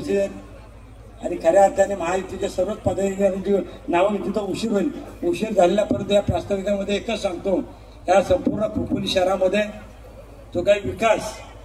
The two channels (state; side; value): identical; both; correlation 1.00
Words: आहेत आणि खऱ्या अर्थाने महायुतीच्या सर्वच पदाधिकाऱ्यांची नावं तिथं उशीर होईल। उशीर झालेल्या परंतु या प्रास्ताविकामध्ये एकच सांगतो, या संपूर्ण खोपोली शहरामध्ये जो काही विकास